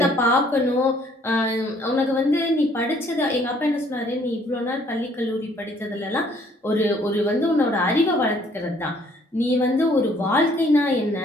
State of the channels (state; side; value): normal; both; correlation 0.62